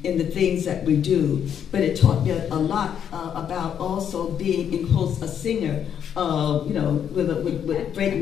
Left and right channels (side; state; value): right; quieter; 8.7 dB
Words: in the things that we do. But it taught me a lot about also being, in quotes, a singer, you know, with great